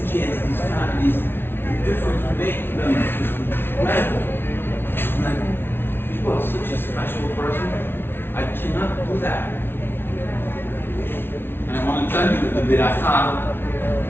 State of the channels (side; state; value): right; late; 0.11 ms